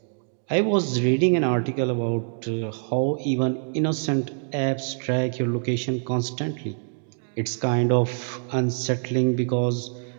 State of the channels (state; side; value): silent; left; digital silence